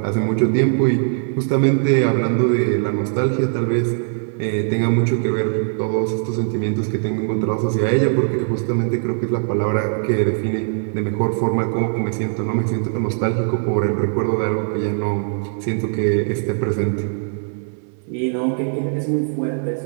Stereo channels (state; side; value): silent; left; digital silence